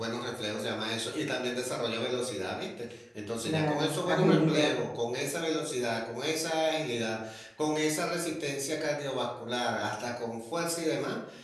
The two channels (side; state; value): both; identical; correlation 1.00